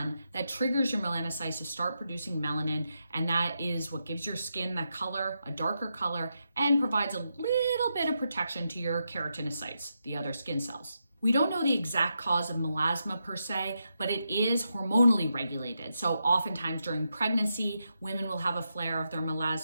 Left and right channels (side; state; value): both; inverted; correlation -0.85